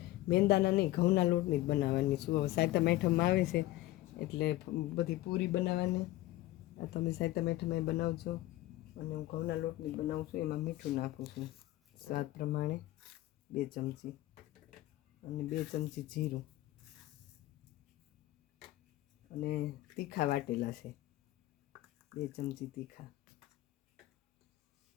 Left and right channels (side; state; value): right; quieter; 16.6 dB